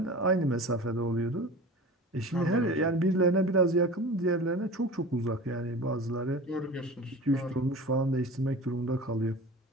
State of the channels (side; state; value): both; normal; correlation 0.36